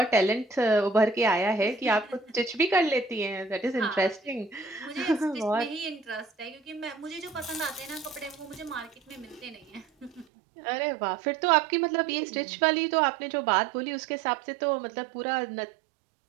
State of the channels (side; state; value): left; drops out; at 10.2 s